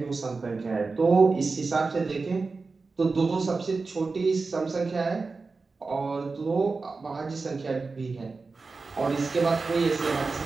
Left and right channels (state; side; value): quieter; left; 4.1 dB